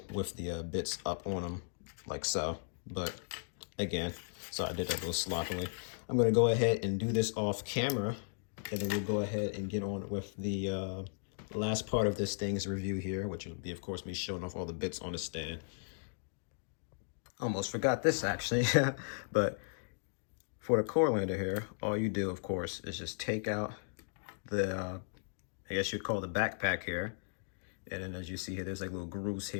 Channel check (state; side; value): silent; right; digital silence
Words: with the bits up on them like so. But again, so I did that a little sloppily. I'm going to go ahead and do this off camera, and then we'll go ahead and get on with the last part of this thing's review here, which will be, of course, me showing off all the bits on the stand. Almost forgot this, actually. But for the core lander here, all you do, of course, is just take out the, I guess you'd call the backpack here. And then as you see here, there's like little grooves